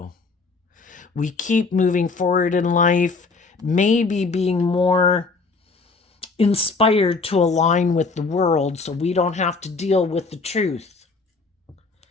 We keep moving forward in life maybe being more inspired to align with the world so we don't have to deal with the truth.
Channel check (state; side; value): quieter; right; 4.2 dB